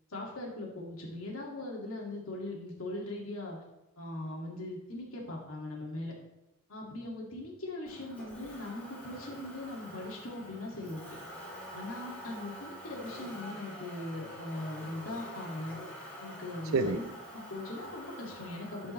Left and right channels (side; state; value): both; normal; correlation 0.33